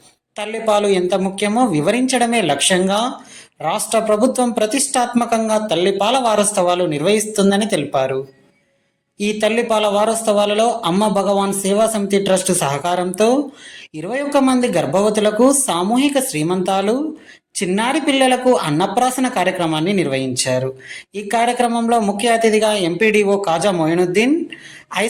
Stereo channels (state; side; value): identical; both; correlation 1.00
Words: తల్లిపాలు ఎంత ముఖ్యమో వివరించడమే లక్ష్యంగా రాష్ట్ర ప్రభుత్వం ప్రతిష్టాత్మకంగా తల్లిపాల వారోత్సవాలు నిర్వహిస్తుందని తెలిపారు. ఈ తల్లిపాల వారోత్సవాలలో అమ్మ భగవాన్ సేవా సమితి ట్రస్ట్ సహకారంతో 21 మంది గర్భవతులకు సామూహిక శ్రీమంతాలు, చిన్నారి పిల్లలకు అన్నప్రాసన కార్యక్రమాన్ని నిర్వహించారు. ఈ కార్యక్రమంలో ముఖ్య అతిథిగా ఎంపీడీఓ కాజా మొయినుద్దీన్,